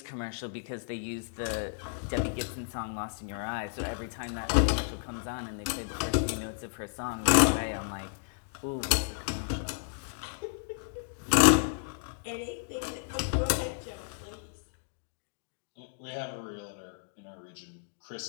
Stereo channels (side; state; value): right; silent; digital silence